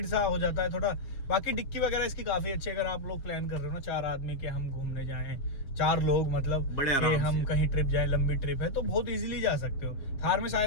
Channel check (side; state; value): right; late; 7.3 ms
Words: सा हो जाता है थोड़ा। बाकी डिक्की वगैरह इसकी काफी अच्छी है, अगर आप लोग प्लान कर रहे हो ना 4 आदमी के हम घूमने जाएं, 4 लोग मतलब बड़े आराम हम से कहीं ट्रिप जाएं, लंबी ट्रिप है तो बहुत इजीली जा सकते हो। थार में